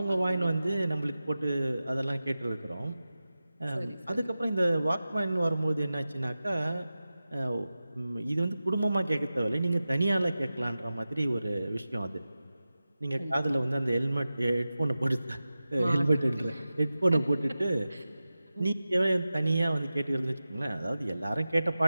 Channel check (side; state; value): both; inverted; correlation -0.95